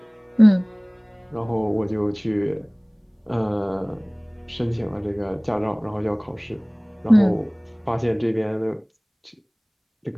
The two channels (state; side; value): identical; both; correlation 1.00